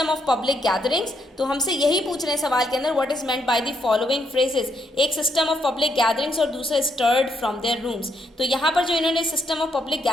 ऑफ पब्लिक गैदरिंग्स, तो हमसे यही पूछ रहे हैं सवाल के अंदर what is meant by the following phrases, एक सिस्टम ऑफ पब्लिक गैदरिंग्स और दूसरा स्टर्ड फ्रॉम देयर रूम्स। तो यहाँ पर जो इन्होंने सिस्टम ऑफ पब्लिक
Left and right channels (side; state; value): both; normal; correlation 0.76